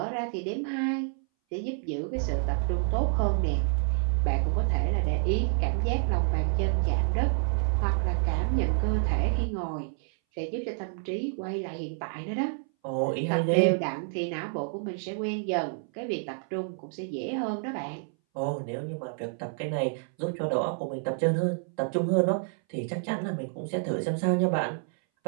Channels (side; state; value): left; silent; 59 dB below the other